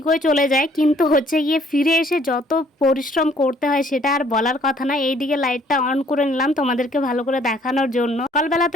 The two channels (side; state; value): both; normal; correlation 0.61